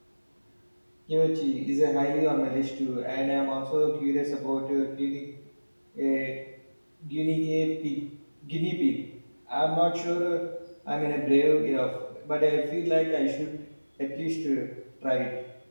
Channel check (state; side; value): inverted; both; correlation -1.00